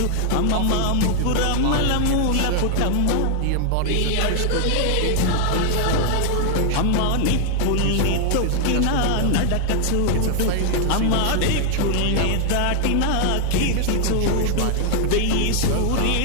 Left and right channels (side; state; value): both; different; correlation 0.00